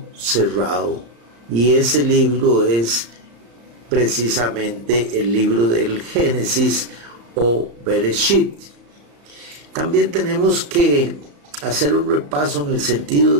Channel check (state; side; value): late; left; 34 ms